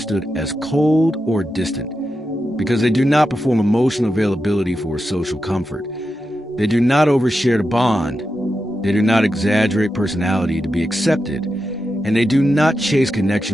as cold or distant, because they do not perform emotional availability for social comfort. They do not overshare to bond. They do not exaggerate personality to be accepted. And they do not chase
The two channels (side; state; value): both; normal; correlation 0.89